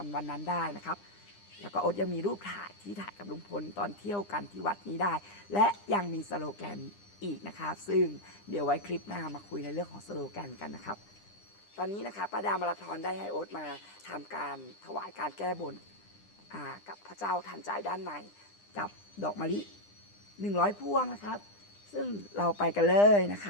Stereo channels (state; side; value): late; right; 9.9 ms